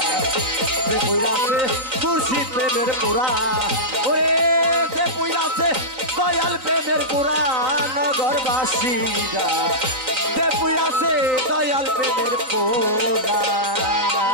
যে পুইরাছে মুর্শিদ প্রেমের পুরা ওরে যে পুইরাছে দয়াল প্রেমের পুরা নগরবাসীরা যে পুইরাছে দয়াল প্রেমের পুরা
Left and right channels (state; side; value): late; left; 3.9 ms